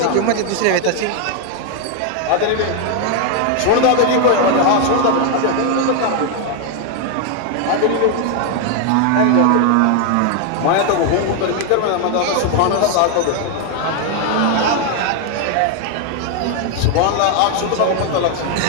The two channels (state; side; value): different; both; correlation 0.00